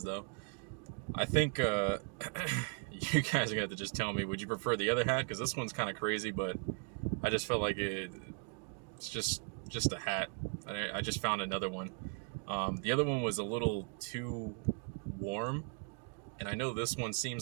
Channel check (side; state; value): left; quieter; 39.5 dB